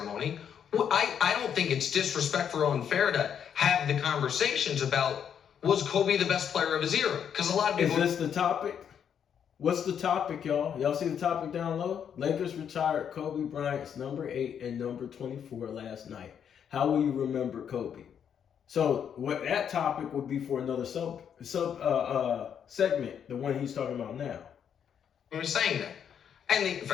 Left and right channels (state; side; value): quieter; right; 8.3 dB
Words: I don't think it's disrespectful or unfair to have the conversations about, was Kobe the best player of his era? Because a lot of people. Is this the topic? What's the topic, y'all? Y'all see the topic down low? Lakers retired Kobe Bryant's number 8 and number 24 last night. How will you remember Kobe? So what that topic would be for another sub segment, the one he's talking about now. We're saying that, and